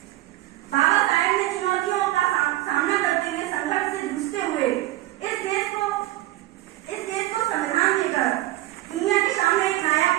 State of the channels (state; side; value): quieter; left; 16.6 dB